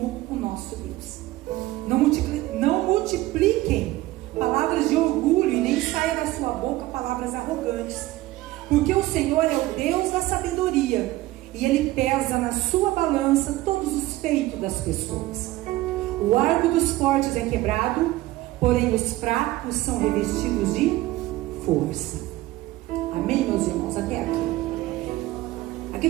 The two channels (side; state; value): left; quieter; 17.4 dB